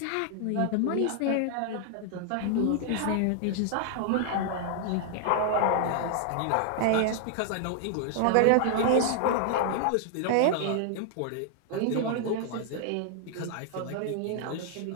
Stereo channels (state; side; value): different; both; correlation 0.00